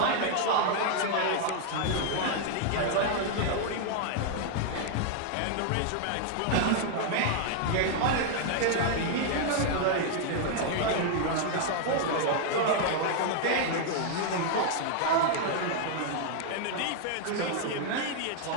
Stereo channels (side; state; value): both; different; correlation 0.00